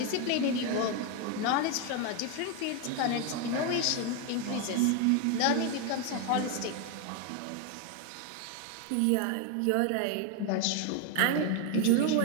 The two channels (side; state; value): both; different; correlation 0.01